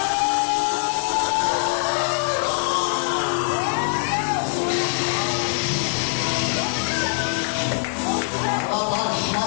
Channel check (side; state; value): right; silent; digital silence